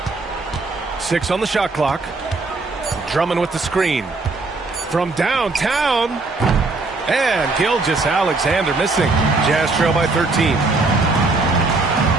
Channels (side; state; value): left; quieter; 3.5 dB